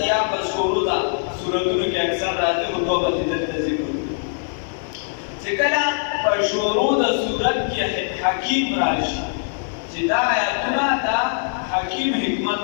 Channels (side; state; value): right; silent; digital silence